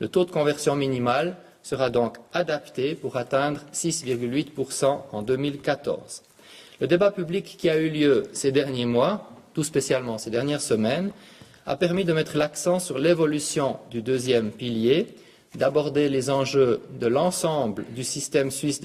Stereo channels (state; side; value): identical; both; correlation 1.00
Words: taux de conversion minimal sera donc adapté pour atteindre 6,8% en 2014. Le débat public qui a eu lieu ces derniers mois, tout spécialement ces dernières semaines, a permis de mettre l'accent sur l'évolution du deuxième pilier, d'aborder les enjeux de l'ensemble du système suisse